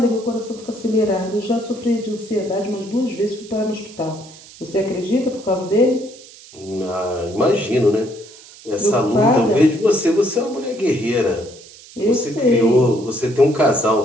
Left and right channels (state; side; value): noise; right; hiss, 20 dB below the sound